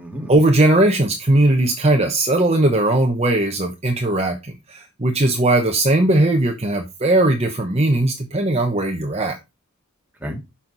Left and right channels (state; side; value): normal; both; correlation 0.57